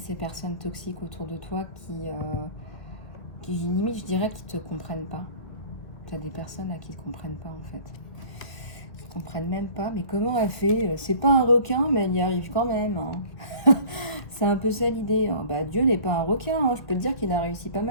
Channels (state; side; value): late; right; 1.6 ms